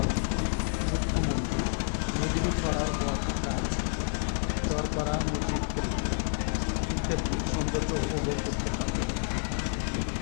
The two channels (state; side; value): silent; right; 58 dB below the other